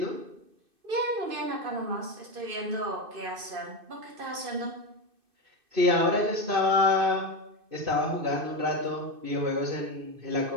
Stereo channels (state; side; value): late; left; 2.6 ms